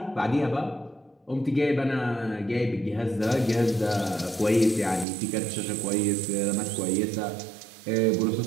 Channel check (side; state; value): left; drops out; at 5.1 s